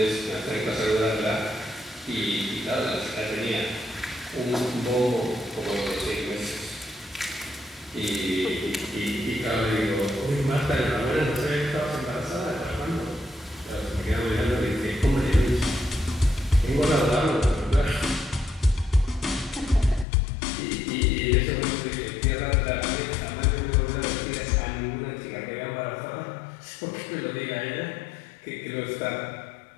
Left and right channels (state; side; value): drops out; right; at 20.1 s